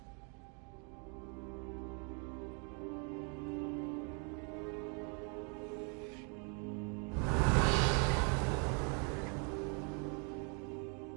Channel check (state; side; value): quieter; left; 37.2 dB